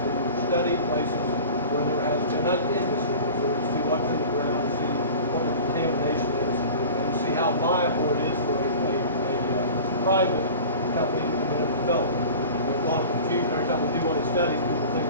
study places where there has been an industry before, to see what's in the ground, see what the contamination is, and see how viable it is for a private company to come in and develop it. There's a lot of confusion every time we do one of these studies. People think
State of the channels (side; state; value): both; inverted; correlation -0.38